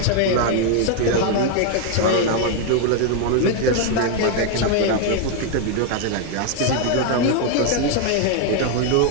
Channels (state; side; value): different; both; correlation 0.01